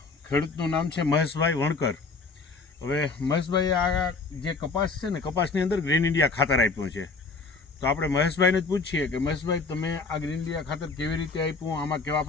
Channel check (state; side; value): quieter; right; 4.2 dB